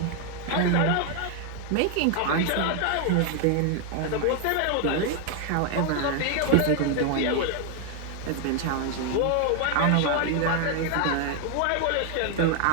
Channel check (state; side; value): different; both; correlation 0.00